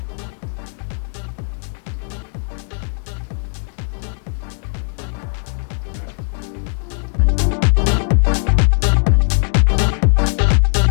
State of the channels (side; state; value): right; silent; 63 dB below the other